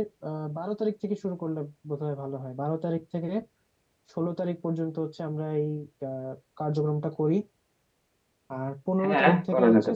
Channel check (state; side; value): identical; both; correlation 1.00